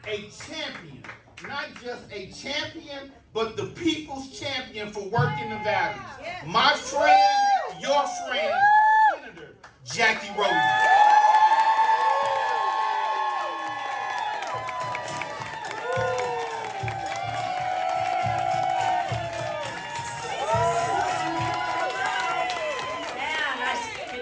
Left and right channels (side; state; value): both; identical; correlation 1.00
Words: a champion, not just a champion, but the people's champion for working Nevada. My friend, your friend, Senator Jacky Rosen.